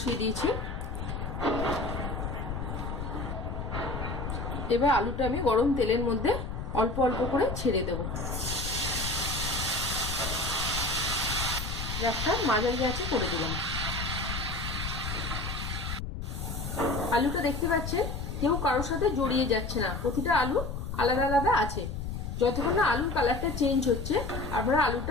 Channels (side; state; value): left; noise; rumble, 5 dB below the sound